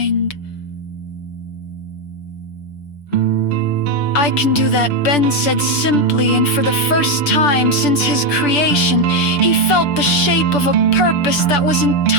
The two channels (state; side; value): late; right; 6.9 ms